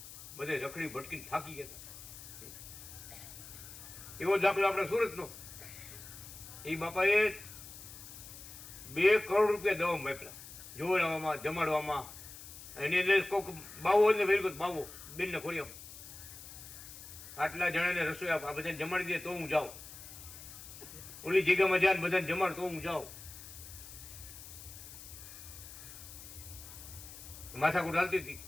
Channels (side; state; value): left; noise; hiss, 14 dB below the sound